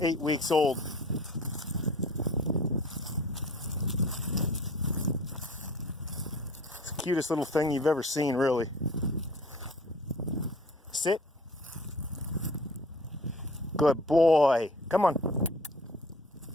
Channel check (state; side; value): normal; both; correlation 0.47